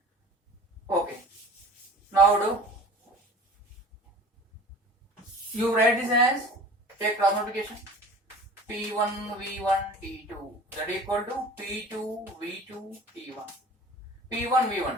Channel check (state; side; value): normal; both; correlation 0.42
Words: Okay. Now do you write this as, take cross multiplication, P1 V1 T2 that equal to P2 V2 T1. P1